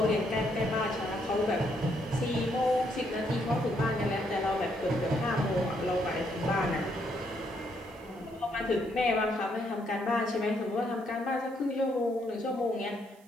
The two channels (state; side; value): noise; right; hiss, 29 dB below the sound